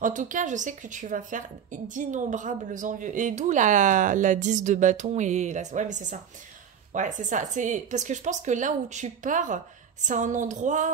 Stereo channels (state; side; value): quieter; left; 7.9 dB